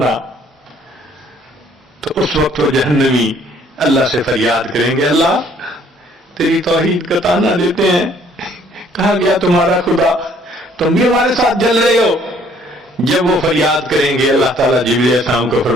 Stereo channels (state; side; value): normal; both; correlation 0.61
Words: تو اس وقت وہ جہنمی اللہ سے فریاد کریں گے، اللہ تیری توحید کا تانا دیتے ہیں، کہا گیا تمہارا خدا، تم بھی ہمارے ساتھ جل رہے ہو۔ جب وہ فریاد کریں گے، اللہ تعالیٰ جبرائیل علیہ السلام کو